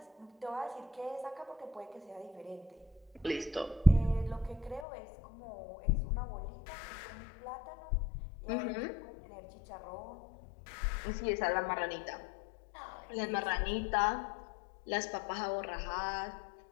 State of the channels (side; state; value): right; drops out; at 4.9 s